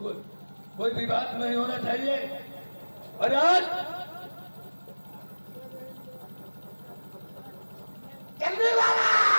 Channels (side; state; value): both; inverted; correlation -1.00